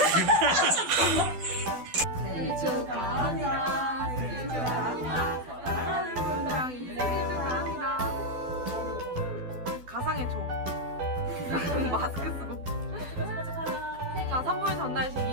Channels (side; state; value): left; late; 12 ms